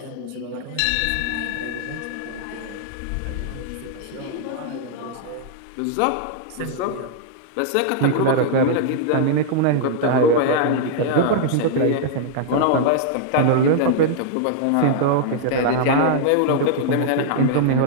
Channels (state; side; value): different; both; correlation -0.01